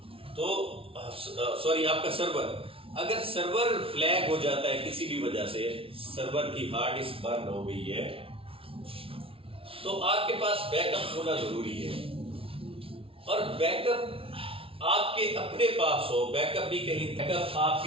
तो सॉरी, आपका सर्वर, अगर सर्वर फ्लैग हो जाता है किसी भी वजह से, सर्वर की हार्ड डिस्क बर्न हो गई है, तो आपके पास बैकअप होना जरूरी है। और बैकअप आपके अपने पास हो, बैकअप भी कहीं, बैकअप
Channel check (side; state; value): left; late; 0.26 ms